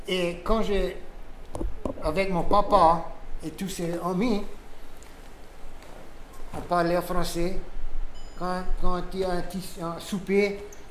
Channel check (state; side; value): identical; both; correlation 1.00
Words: et quand avec mon papa et tous ses amis, on parlait français. Quand il y a un souper,